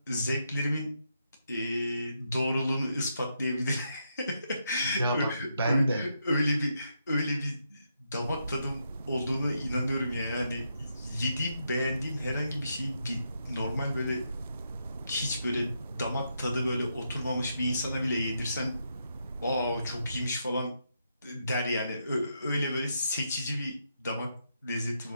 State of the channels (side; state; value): both; inverted; correlation -0.81